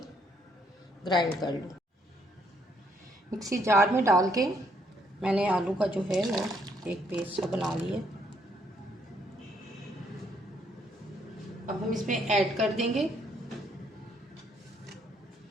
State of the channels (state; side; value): normal; both; correlation 0.70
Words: ग्राइंड कर लूँ। मिक्सी जार में डाल के मैंने आलू का जो है वो एक पेस्ट सा बना लिया। अब हम इसमें ऐड कर देंगे